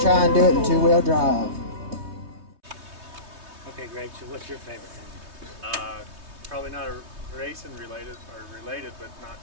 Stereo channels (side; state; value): left; late; 3.2 ms